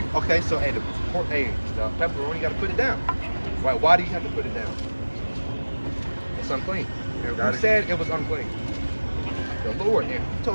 Okay, so the pepperoni, you got to put it down. Right? Why do you have to put it down? It's unclean. And who said it was unclean? The Lord. And who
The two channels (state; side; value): inverted; both; correlation -1.00